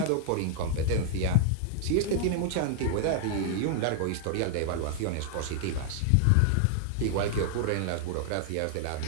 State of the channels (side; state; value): both; different; correlation -0.01